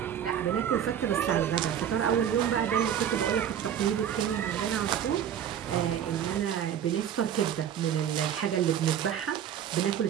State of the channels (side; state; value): left; quieter; 9.4 dB